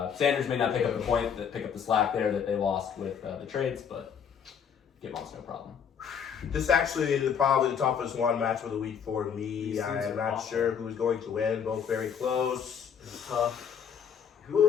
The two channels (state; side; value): quieter; right; 7.5 dB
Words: Sanders may not pick up the slack there that they lost with the trades, but get Monas no problem. This is actually probably the toughest one match of the week for me. These I teams am are not awful. sure who's going to win. Both very close. It's tough.